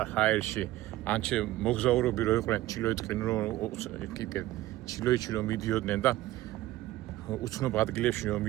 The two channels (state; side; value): quieter; left; 15.8 dB